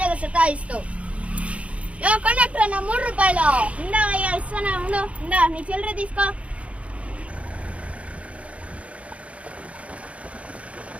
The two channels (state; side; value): late; left; 0.064 ms